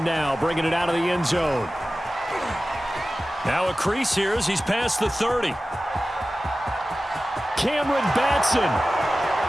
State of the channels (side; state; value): both; normal; correlation 0.96